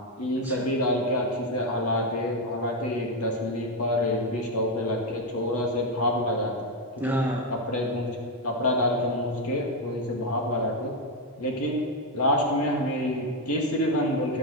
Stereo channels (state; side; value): normal; both; correlation 0.06